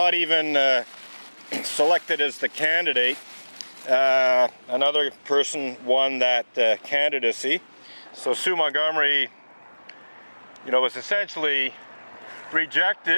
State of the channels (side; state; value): both; inverted; correlation -1.00